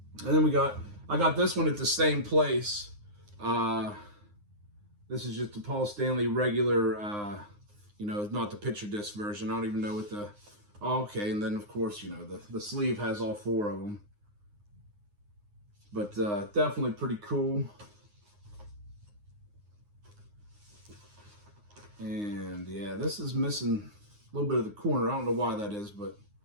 And then I got this one at the same place. This is just the Paul Stanley regular, you know, not the picture disc version. I don't even know what the... Oh, okay, and then, of course, you know, the sleeve has all 4 of them. But definitely pretty cool. And, yeah, this is missing a little bit of the corner. I don't know why that is, but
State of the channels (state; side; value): late; left; 9.7 ms